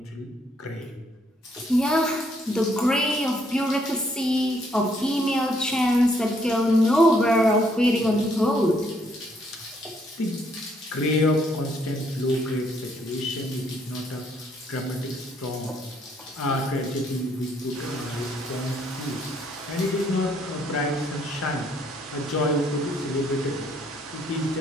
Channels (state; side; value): normal; both; correlation 0.69